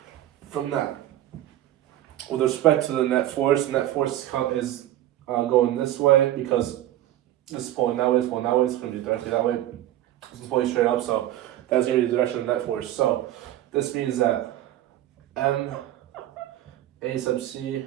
From that, with respect to the net force is going this way because this is pulling that way, it's pulling that way, it's going to be directly that way. This is pulling straight up, so that's going to be the direction of net force. So this means that M A sub C,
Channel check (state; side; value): quieter; left; 13.4 dB